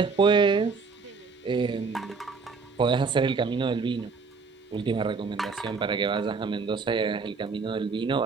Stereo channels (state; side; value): quieter; left; 4.7 dB